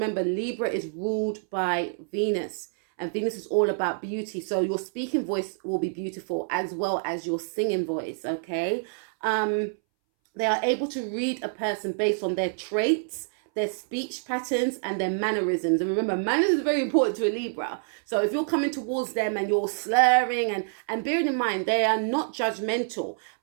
Libra is ruled by Venus, and Venus is all about beauty. So your speaking voice will be beautiful as well as your singing voice, okay? They are able to read a person based on their traits, their speech patterns, and their mannerisms. And remember, manners is very important to a Libra. So if you're coming towards them and you're slurring, and bearing in mind, they are not judgmental.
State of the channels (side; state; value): left; silent; 60 dB below the other